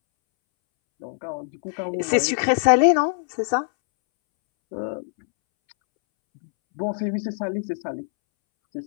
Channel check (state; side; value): silent; right; 63 dB below the other